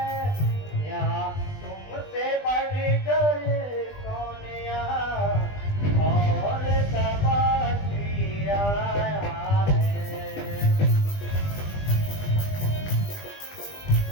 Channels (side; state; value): right; late; 20 ms